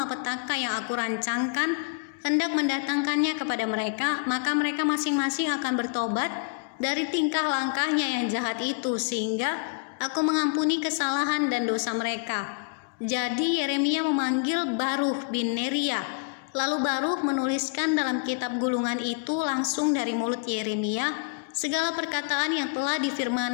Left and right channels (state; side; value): quieter; right; 36.5 dB